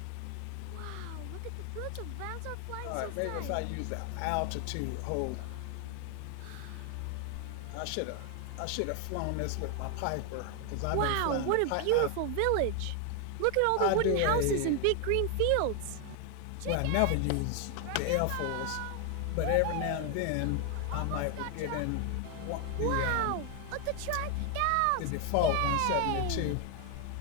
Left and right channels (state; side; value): different; both; correlation 0.00